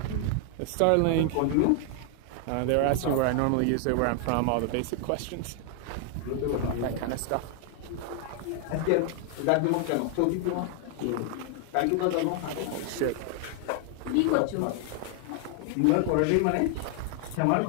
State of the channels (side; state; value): both; different; correlation 0.00